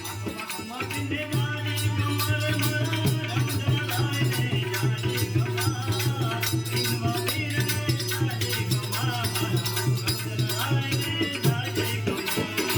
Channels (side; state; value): both; identical; correlation 1.00